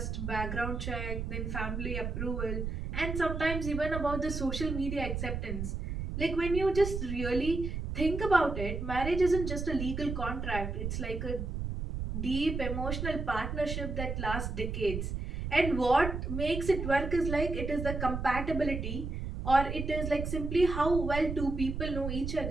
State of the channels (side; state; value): right; noise; rumble, 4 dB below the sound